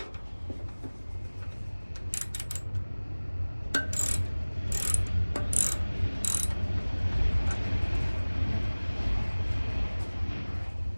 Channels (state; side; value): inverted; both; correlation -1.00